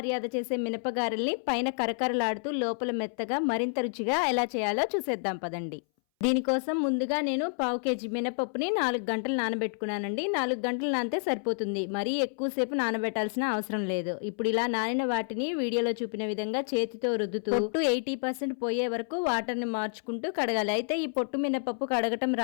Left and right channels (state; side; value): silent; right; 58 dB below the other